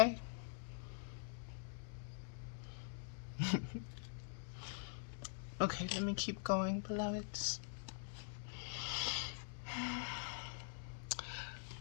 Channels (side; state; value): right; silent; digital silence